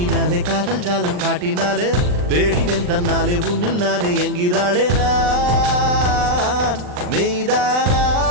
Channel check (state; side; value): late; left; 39 ms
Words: காதல் ஜாலம் காட்டினாலே தேடினேன் தன்னாலே உன்னில் நானே என்கிறாளே நான் மெய்தானா